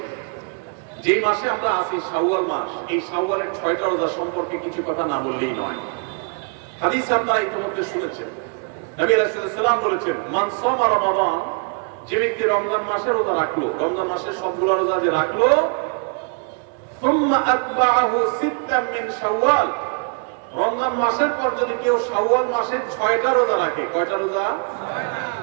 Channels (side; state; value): left; quieter; 39.5 dB